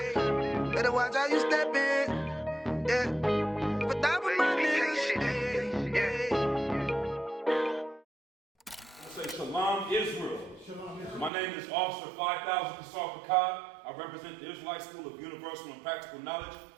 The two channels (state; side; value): drops out; left; at 11.3 s